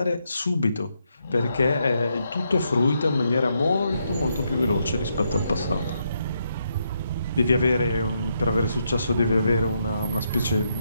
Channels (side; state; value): both; inverted; correlation -0.79